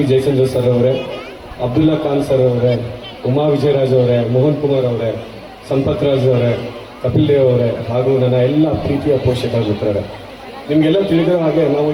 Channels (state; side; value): identical; both; correlation 1.00